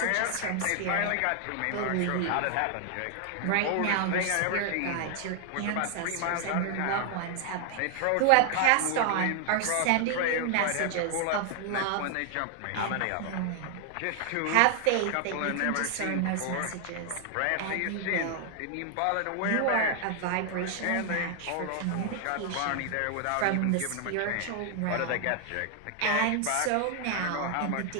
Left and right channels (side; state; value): both; different; correlation 0.00